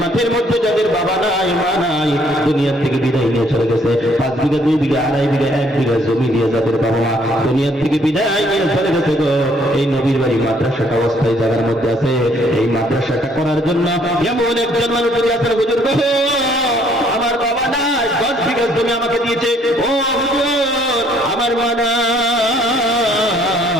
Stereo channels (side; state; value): both; normal; correlation 0.64